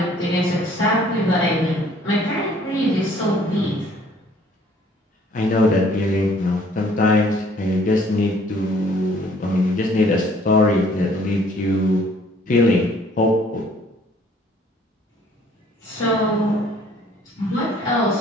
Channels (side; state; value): both; normal; correlation 0.58